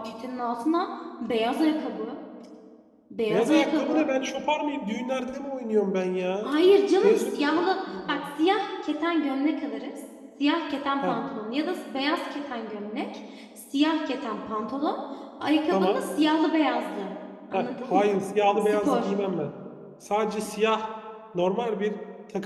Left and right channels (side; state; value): both; identical; correlation 1.00